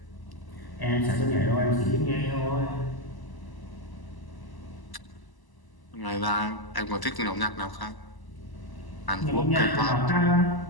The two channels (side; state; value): right; late; 1.0 ms